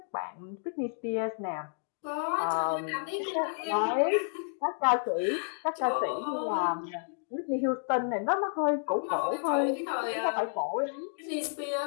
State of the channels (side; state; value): right; silent; digital silence